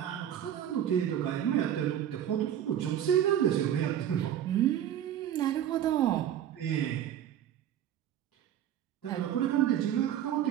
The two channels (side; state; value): left; quieter; 10.5 dB